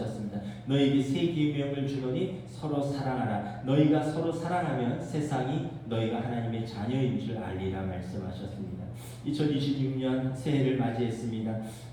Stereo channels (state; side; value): identical; both; correlation 1.00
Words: 너에게 새 계명을 주노니 서로 사랑하라. 너희가 서로 사랑하면 세상이 너희가 하나님의 자녀인 줄 알리라 말씀하셨습니다. 2026년 새해를 맞이했습니다.